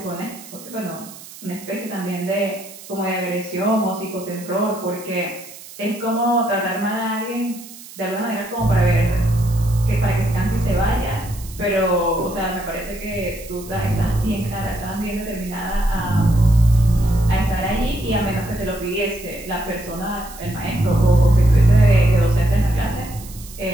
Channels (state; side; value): noise; right; hiss, 17 dB below the sound